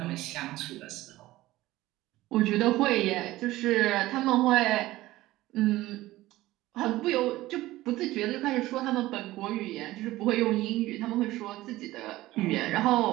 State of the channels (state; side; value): quieter; left; 17.1 dB